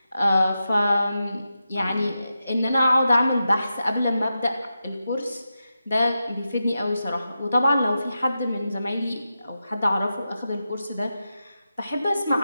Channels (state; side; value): inverted; both; correlation -0.89